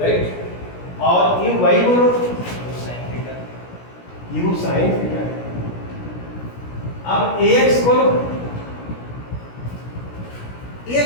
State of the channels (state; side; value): late; right; 17 ms